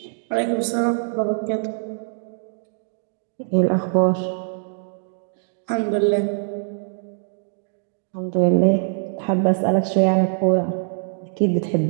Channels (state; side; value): silent; left; digital silence